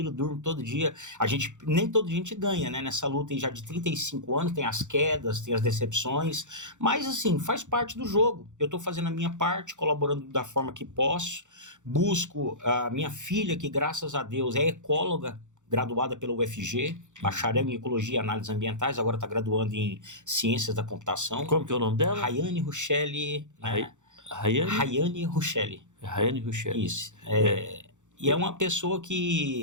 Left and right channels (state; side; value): late; left; 0.85 ms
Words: durmo todo dia. Nem todo dia a gente ganha, né? Nessa luta já de 35 anos, tem as quedas, tem as decepções. Mas, assim, faz parte do jogo. Eu estou fazendo a minha parte, colaborando da forma que posso. Busco a minha filha, que graças a Deus é ecóloga, graduada pela UFG, bacharel em Ecologia e Análises Ambientais, agora está graduando em Ciências da Computação. Como que é o nome dela? Rayane Ruchelli, né? Rayane Ruchelli. Rayane Ruchelli. Isso. E é uma pessoa